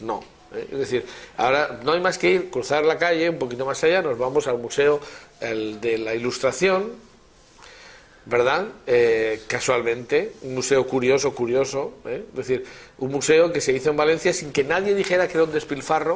Es decir, ahora no hay más que ir, cruzar la calle, un poquito más allá, nos vamos al Museo de la Ilustración, ¿verdad? Casualmente, un museo curioso, es decir, un museo que se hizo en Valencia sin que nadie dijera que era un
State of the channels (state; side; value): identical; both; correlation 1.00